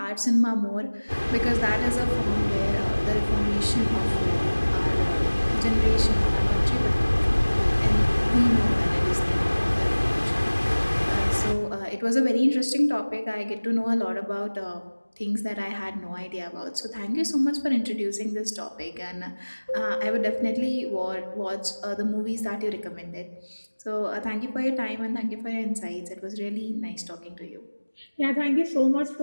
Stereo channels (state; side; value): inverted; both; correlation -1.00